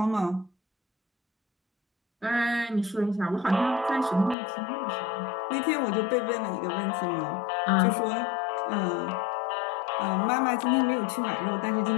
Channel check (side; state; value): right; drops out; at 4.4 s